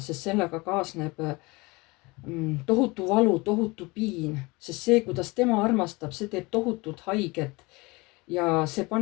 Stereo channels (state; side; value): quieter; right; 24.6 dB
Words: sest sellega kaasneb tohutu valu, tohutu piin, sest see, kuidas tema armastab, see teeb tohutut haiget ja see